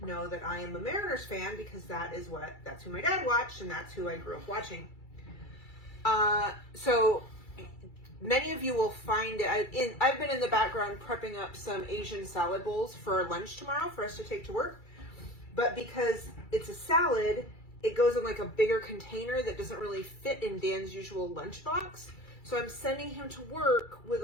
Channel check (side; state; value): right; late; 2.3 ms